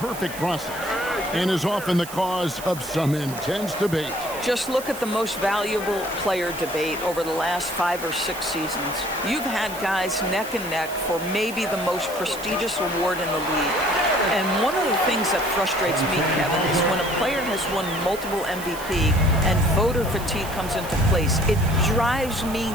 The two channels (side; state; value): right; noise; hiss, 13 dB below the sound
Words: process and is often the cause of some intense debate. Just look at the most valuable player debate over the last 5 or 6 seasons. You've had guys neck and neck for maybe the most prestigious award in the league. And one of the things that frustrates me, Kevin, is when a player has won multiple MVP and voter fatigue comes into place. It drives me